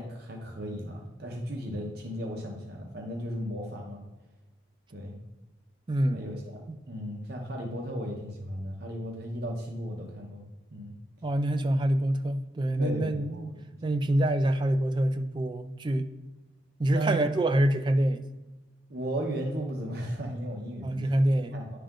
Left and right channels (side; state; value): both; normal; correlation 0.84